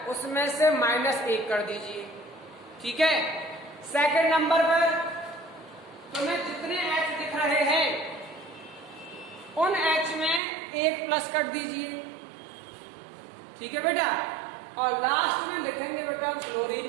उसमें से -1 कर दीजिए। ठीक है। सेकंड नंबर पर तुम्हें जितने H दिख रहे हैं उन H में 1 प्लस कर दीजिए। ठीक है बेटा। और लास्ट में लिखेंगे बेटा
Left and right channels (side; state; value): left; drops out; at 10.4 s